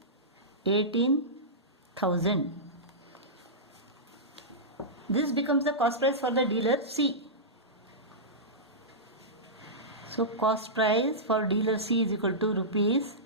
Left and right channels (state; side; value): normal; both; correlation -0.15